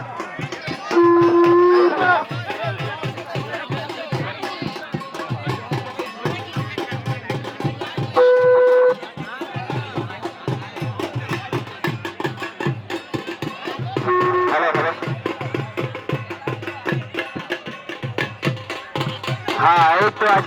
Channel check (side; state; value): both; identical; correlation 1.00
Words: হ্যাঁ এই তো